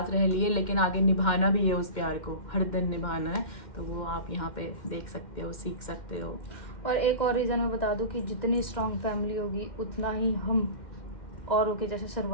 रह लिए, लेकिन आगे निभाना भी है। उस प्यार को हर दिन निभाना है, तो वो आप यहाँ पे देख सकते हो, सीख सकते हो। और एक और रीज़न मैं बता दूं कि जितनी स्ट्रांग फैमिली होगी उतना ही हम औरों के जैसे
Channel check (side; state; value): right; late; 2.1 ms